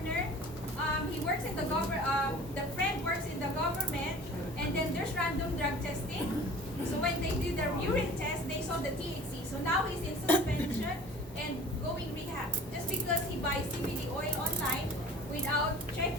He works in the government. The friend works in the government, and then there's random drug testing. So when they did their urine test, they saw the THC. So now he's in suspension and going rehab just because he buys CBD oil online without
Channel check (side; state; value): both; normal; correlation 0.44